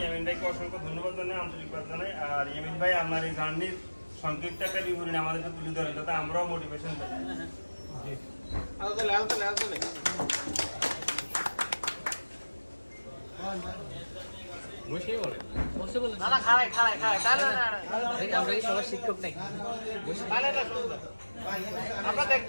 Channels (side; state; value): both; inverted; correlation -1.00